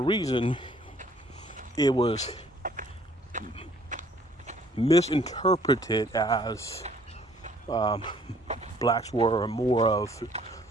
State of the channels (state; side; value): normal; both; correlation 0.60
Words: reason, it was misinterpreted as blacks were more of